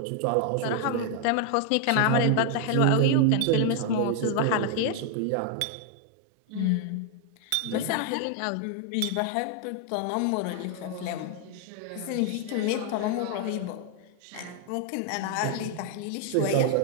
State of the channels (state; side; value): different; both; correlation 0.00